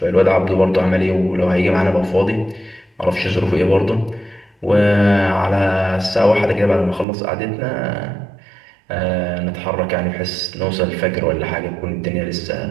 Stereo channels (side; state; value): left; drops out; at 7.1 s